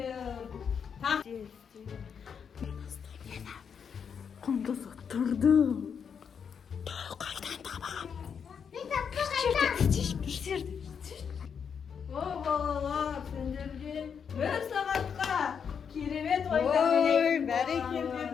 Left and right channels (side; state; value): right; quieter; 7.0 dB